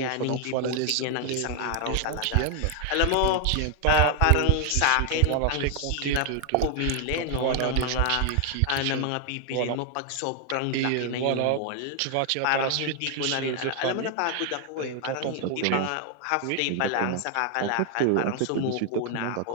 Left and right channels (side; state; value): both; different; correlation 0.00